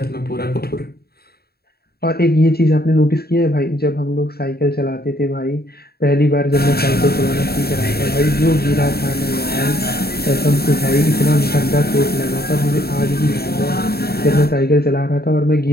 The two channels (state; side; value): late; right; 0.46 ms